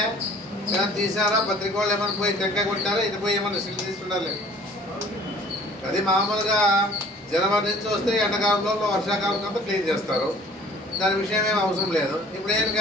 ఏమైనా తీసారా? పత్రిక వాళ్ళు ఏమైనా పోయి టెంకాయ కొట్టారా? ఇటు పోయి ఏమైనా సిల్ట్ తీసుకుంటారు? అది మామూలుగా జనవరి నుంచి వస్తే ఎండాకాలంలో వర్షాకాలం అంతా క్లీన్ చేస్తారు. దాని విషయం ఏం అవసరం లేదు. ఇప్పుడు ఏం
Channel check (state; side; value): normal; both; correlation 0.51